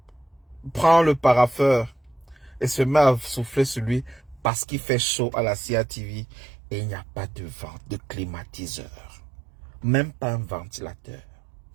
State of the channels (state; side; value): drops out; left; at 4.5 s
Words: prend le paraffeur et se met à souffler sur lui parce qu'il fait chaud à la CIA TV et il n'y a pas de vent, de climatiseur. Même pas un ventilateur.